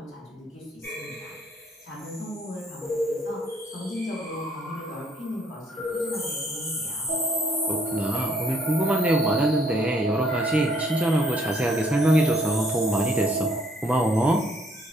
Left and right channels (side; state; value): both; normal; correlation 0.67